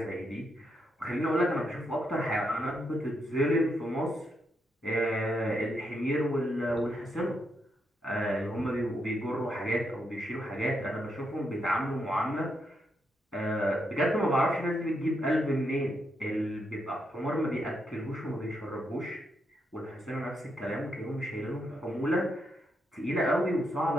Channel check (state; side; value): normal; both; correlation 0.80